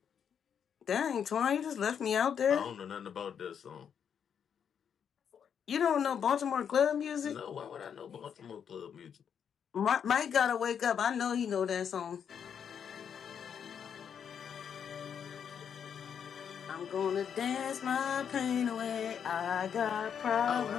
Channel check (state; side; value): quieter; right; 7.8 dB